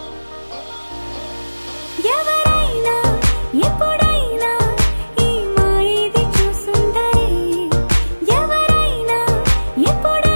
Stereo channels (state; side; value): inverted; both; correlation -1.00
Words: ఎవరైనా ఎప్పుడైనా ఈ మాయది చూసుండరే ఎవరైనా